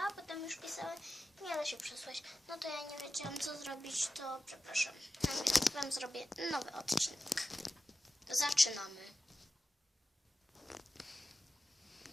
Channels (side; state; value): both; normal; correlation 0.93